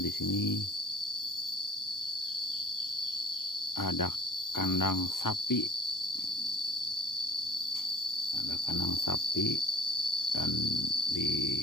sini ada kandang sapi. Ada kandang sapi, dan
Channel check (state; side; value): late; right; 0.91 ms